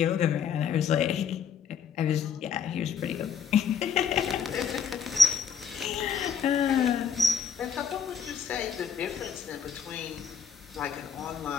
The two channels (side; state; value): right; quieter; 6.7 dB